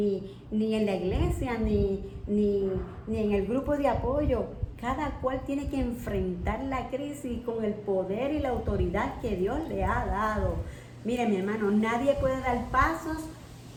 en la iglesia, ni en el grupo de apoyo. Cada cual tiene que enfrentar la crisis con el poder y la autoridad que Dios le ha dado. Mire, mi hermano, nadie puede dar pasos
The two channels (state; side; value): identical; both; correlation 1.00